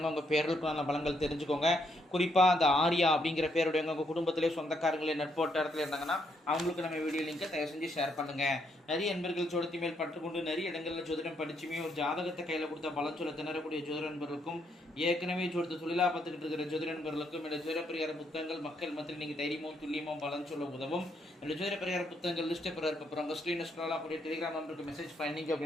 உங்கள் பேர்களுக்குள்ளான பலன்கள் தெரிஞ்சுக்கோங்க. குறிப்பாக அந்த ஆர்யா அப்படிங்கிற பேருடையவங்க உங்கள் குடும்பத்திலே சொந்தக்காரங்களே நட்போட்டத்தில் இருந்தாங்கன்னா அவங்களுக்கு நம்ம வீடியோ லிங்கை தயவு செஞ்சு ஷேர் பண்ணுங்கள். நிறைய நண்பர்கள் ஜோதிடத்தி மேல் பற்றுக்கொண்டு நிறைய இடங்களில் ஜோதிடம் படிச்சுமே ஒரு ஜாதகத்தை கையில் கொடுத்த பலன் சொல்ல திணறக்கூடிய ஜோதிட நண்பர்களுக்கும் ஏற்கனவே ஜோதிட தொழிலாக பார்த்துக்கிட்டு இருக்கிற ஜோதிட நண்பர்களுக்கும் இந்த ஜோதிட பரிகார புத்தகங்கள் மக்கள் மத்தியில் நீங்கள் தைரியமும் துல்லியமும் பலன் சொல்ல உதவும். என்னுடைய ஜோதிட பரிகார புத்தகங்கள் லிஸ்ட்டை அப்புறம் உங்கள் ஸ்க்ரீன் ஸ்க்ரோல் ஆகக்கூடிய டெலிகிராம் நம்பருக்கு மெசேஜ் பண்ணிங்க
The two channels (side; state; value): both; normal; correlation 0.75